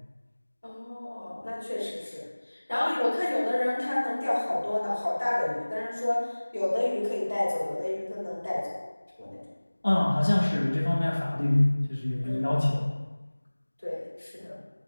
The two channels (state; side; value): inverted; both; correlation -1.00